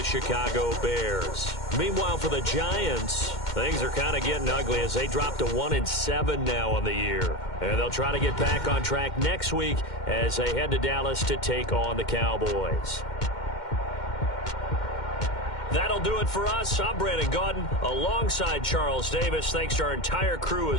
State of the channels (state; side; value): late; right; 2.1 ms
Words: Chicago Bears. Meanwhile, for the Giants, things are kind of getting ugly as they drop to 1-7 now on the year. And they'll try to get back on track next week as they head to Dallas to take on the Cowboys. That'll do it for us. I'm Brandon Gaudin alongside Charles Davis. Thanks to our entire crew